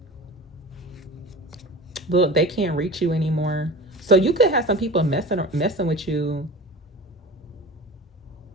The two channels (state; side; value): normal; both; correlation 0.35